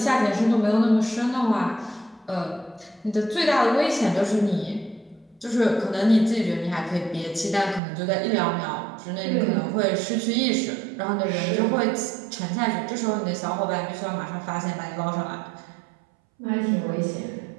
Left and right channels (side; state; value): left; drops out; at 7.8 s